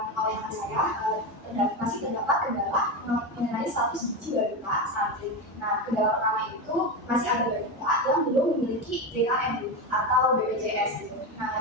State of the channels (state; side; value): normal; both; correlation 0.16